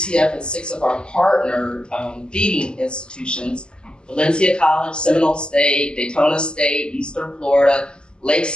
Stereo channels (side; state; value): right; late; 0.048 ms